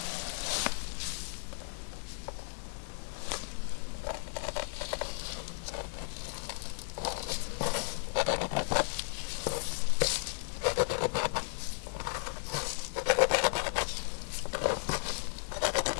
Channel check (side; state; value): right; silent; digital silence